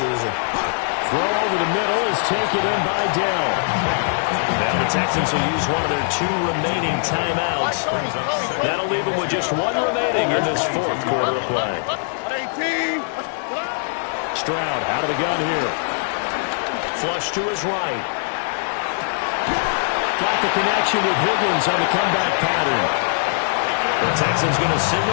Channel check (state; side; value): silent; right; digital silence